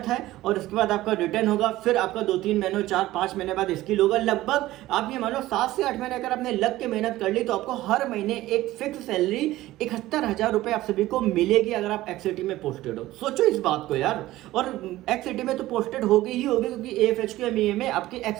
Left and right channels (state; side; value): quieter; left; 16.3 dB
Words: है और उसके बाद आपका रिटर्न होगा, फिर आपका 2-3 महीनों 4-5 महीने बाद स्किल होगा। लगभग आप ये मानो 7 से 8 महीने अगर आपने लग के मेहनत कर ली तो आपको हर महीने एक फिक्स सैलरी 71,000 रुपये आप सभी को मिलेगी अगर आप एक्ससिटी में पोस्टेड हो। सोचो इस बात को यार। और एक्ससिटी में तो पोस्टेड होगी ही होगी, क्योंकि AFHQ MEA में आपकी